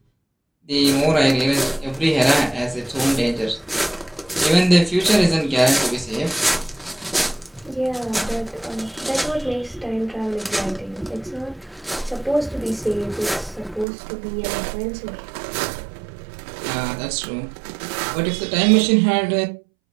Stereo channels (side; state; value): left; drops out; at 13.9 s